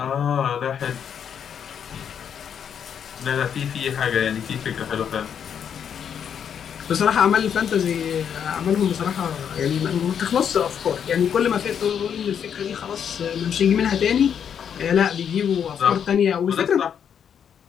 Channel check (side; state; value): right; quieter; 8.1 dB